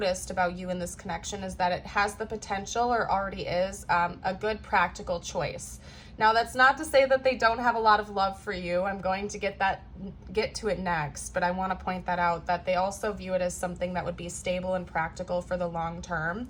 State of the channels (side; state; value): both; identical; correlation 1.00